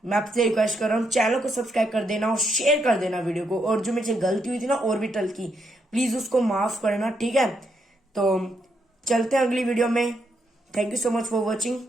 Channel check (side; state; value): both; normal; correlation 0.78